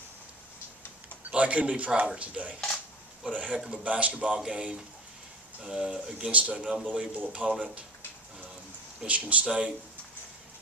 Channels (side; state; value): both; normal; correlation 0.36